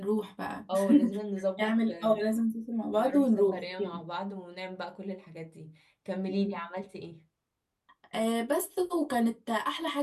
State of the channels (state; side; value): identical; both; correlation 1.00